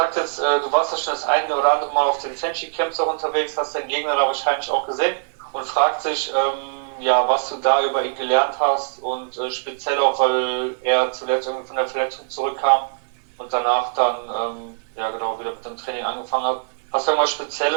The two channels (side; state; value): left; silent; 59 dB below the other